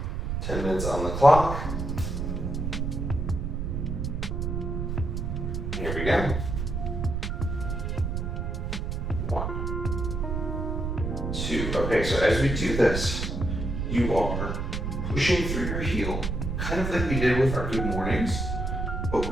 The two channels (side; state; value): right; noise; rumble, 2 dB below the sound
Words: 10 minutes on the clock. Here we go. 1, 2. Okay, so as we do this, you are pushing through your heel, kind of like we did with our good mornings, but